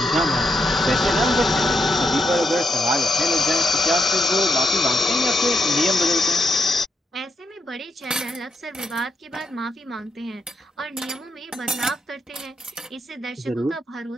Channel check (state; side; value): normal; both; correlation 0.81